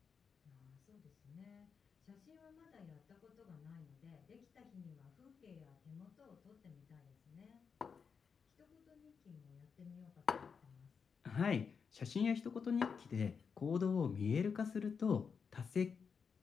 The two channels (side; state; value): right; quieter; 6.0 dB